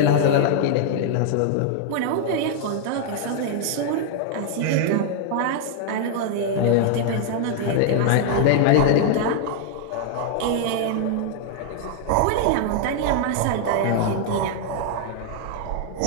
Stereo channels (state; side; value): different; both; correlation 0.00